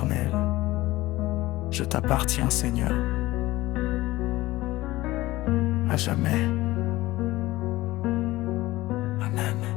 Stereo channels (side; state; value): right; quieter; 18.2 dB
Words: Je t'appartiens Seigneur, à jamais. Amen.